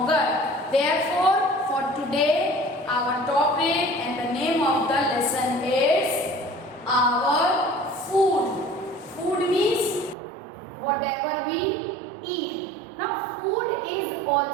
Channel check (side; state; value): left; drops out; at 10.2 s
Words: Therefore, for today our topic and the name of the lesson is our food. Food means whatever we eat. Now food is